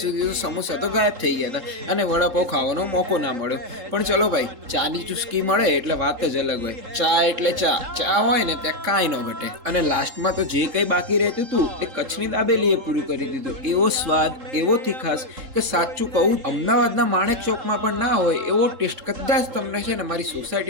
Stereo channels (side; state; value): left; late; 3.6 ms